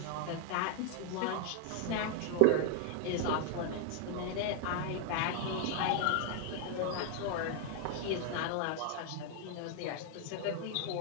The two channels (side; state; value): both; different; correlation 0.00